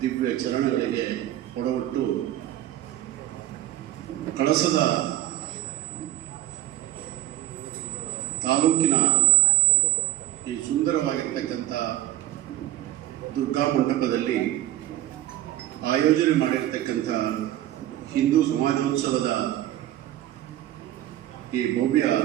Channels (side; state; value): left; quieter; 14.0 dB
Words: ಚರಣಗಳಿಗೆ ಕೊಡವಟ್ಟು ಕಳಸದ ತಾಲೂಕಿನ ಈ ಸುಂದರವಾಗಿರ್ತಕ್ಕಂಥ ದುರ್ಗಾ ಮಂಟಪದಲ್ಲಿ ಆಯೋಜನೆ ಮಾಡಿರ್ತಕ್ಕಂಥ ಹಿಂದೂ ಸಮಾಜೋತ್ಸವದ ಈ ಭವ್ಯ